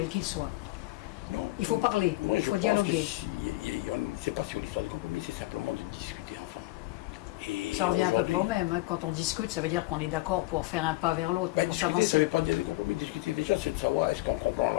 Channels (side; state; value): right; quieter; 20.0 dB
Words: qu'ils soient? Non. Il faut parler, moi, il faut dialoguer. C'est pas sur l'histoire de compromis, c'est simplement de discuter ensemble. Et ça revient à peu près au même. Hein. Quand on discute, ça veut dire qu'on est d'accord pour faire un pas vers l'autre. Ben, discuter, ça ne veut pas dire des compromis. Discuter déjà, c'est de savoir est-ce qu'on comprend